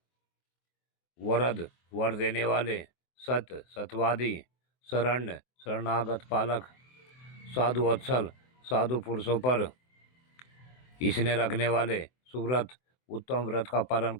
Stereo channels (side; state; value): right; late; 24 ms